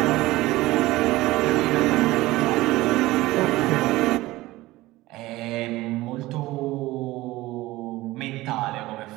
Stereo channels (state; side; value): quieter; left; 18.4 dB